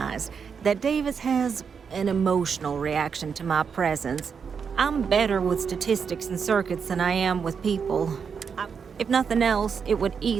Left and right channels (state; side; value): quieter; left; 6.4 dB